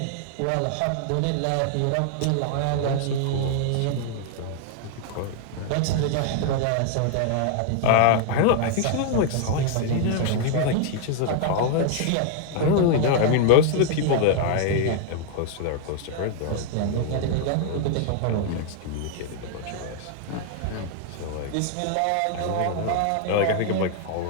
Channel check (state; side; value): different; both; correlation 0.00